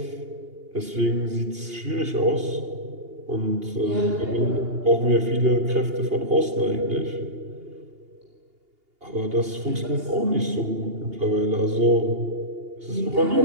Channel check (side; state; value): left; late; 2.8 ms